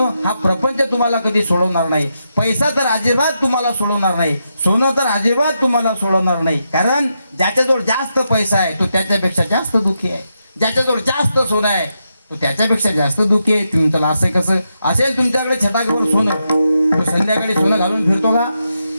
हा प्रपंच तुम्हाला कधी सोडवणार नाही, पैसा तर अजिबात तुम्हाला सोडवणार नाही, सोनं तर अजिबात तुम्हाला सोडवणार नाही. कारण ज्याच्याजवळ जास्त पैसा आहे तो त्याच्यापेक्षा जास्त दुःखी आहे, ज्याच्याजवळ जास्त सोनं आहे तो त्याच्यापेक्षा जास्त दुःखी आहे. तुम्ही त्याला असं कसं असेल तुमच्याकडे छटाकभर सोनं, तो संध्याकाळी सोनं घालून फिरतो का?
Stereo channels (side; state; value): both; inverted; correlation -0.84